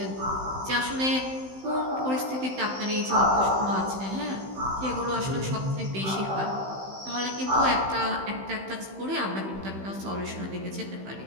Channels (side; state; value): left; late; 15 ms